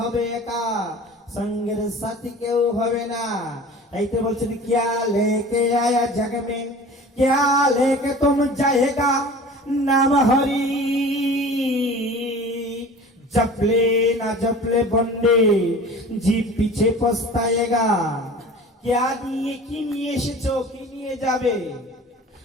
একা, সঙ্গের সাথী কেউ হবে না। তাই তো বলছেন কিয়া লেকে আয়া জগ মে, কিয়া লেকে তুম যায়েগা, নাম হরি জপলে না জপলে বন্ডে জি পিছে পস্তায়েগা। क्या নিয়ে কি নিয়ে এসেছো, কি নিয়ে যাবে?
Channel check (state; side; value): normal; both; correlation 0.40